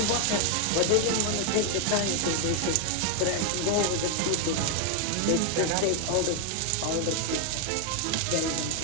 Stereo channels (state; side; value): different; both; correlation 0.01